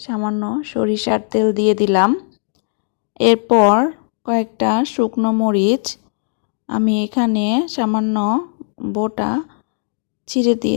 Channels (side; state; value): right; silent; digital silence